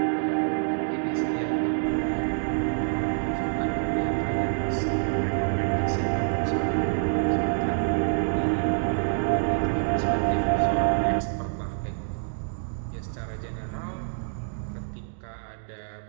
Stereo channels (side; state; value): left; silent; digital silence